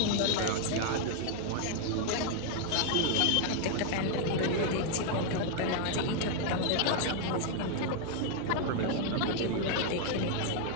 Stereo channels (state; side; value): different; both; correlation 0.00